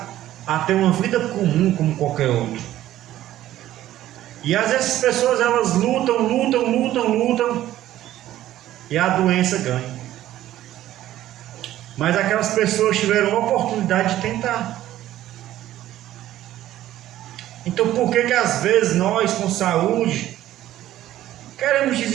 a ter uma vida comum como qualquer outro. E às vezes essas pessoas elas lutam e a doença ganha. Mas aquelas pessoas tiveram a oportunidade de tentar. Então por que às vezes nós com saúde queremos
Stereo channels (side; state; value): left; quieter; 13.6 dB